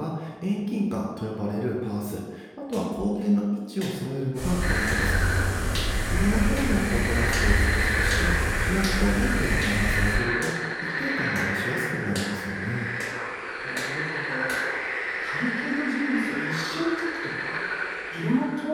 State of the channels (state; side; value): identical; both; correlation 1.00